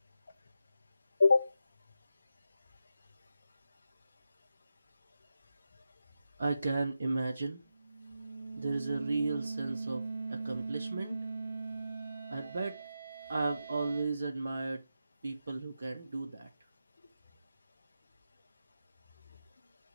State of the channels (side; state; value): both; inverted; correlation -0.89